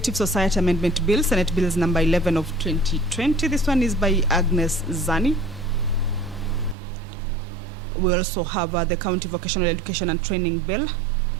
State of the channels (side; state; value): left; drops out; at 6.8 s